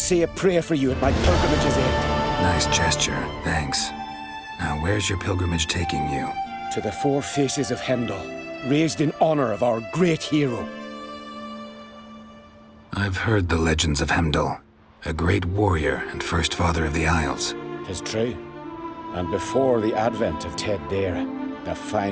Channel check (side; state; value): both; identical; correlation 1.00